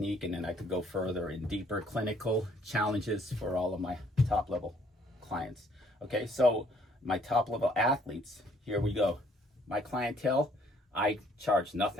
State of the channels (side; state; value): both; normal; correlation 0.63